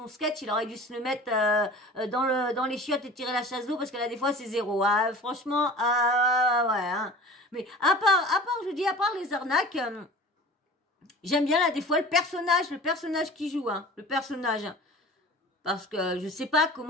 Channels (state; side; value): normal; both; correlation 0.40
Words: sketch, il aurait dû se le mettre dans les chiottes et tirer la chasse d'eau, parce que là, des fois, c'est zéro. Ah, franchement, ouais. Hein. Mais à part, je vous dis, à part les arnaques, j'aime bien, là, des fois, le personnage qui joue, hein. Le personnage. Parce que je sais pas